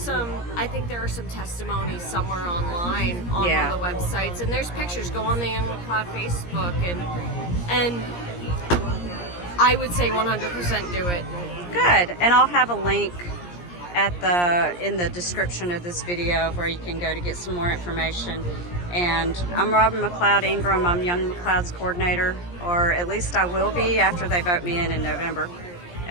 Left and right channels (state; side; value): late; right; 17 ms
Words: think there are some testimonies somewhere online on one of the websites, and there's pictures. Go on the Young McLeod Facebook, and I would say 100% do it. Good, and I'll have a link in the description of this video where you can go to get some more information. And I'm Robin McLeod Ingram. I'm Young McLeod's coordinator, or at least I will be after they vote me in November,